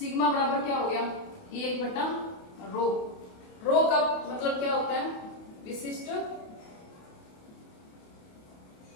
बराबर क्या हो गया? 1/रो। रो का मतलब क्या होता है? विशिष्ट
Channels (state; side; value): late; right; 28 ms